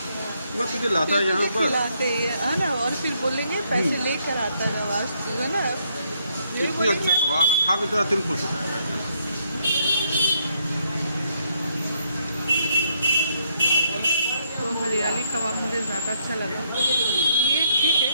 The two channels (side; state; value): both; inverted; correlation -0.73